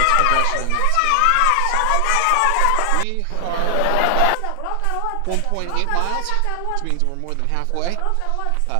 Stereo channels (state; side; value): different; both; correlation 0.00